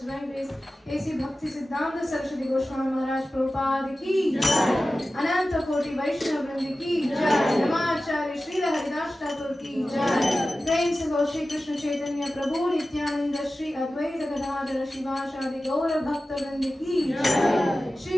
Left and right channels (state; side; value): normal; both; correlation 0.95